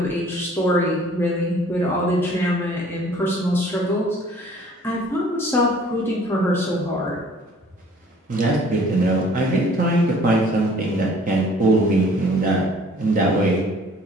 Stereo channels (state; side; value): normal; both; correlation 0.54